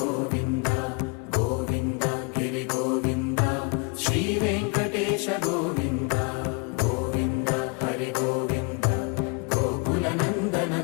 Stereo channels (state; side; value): quieter; right; 32.6 dB